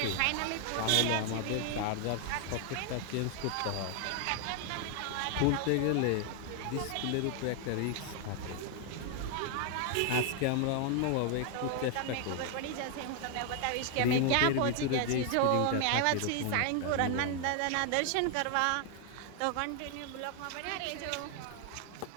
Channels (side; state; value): both; different; correlation 0.00